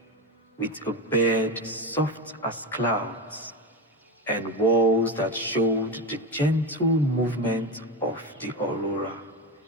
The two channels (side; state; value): both; normal; correlation 0.18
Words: with a bed soft as clouds and walls that showed the gentle movement of the aurora.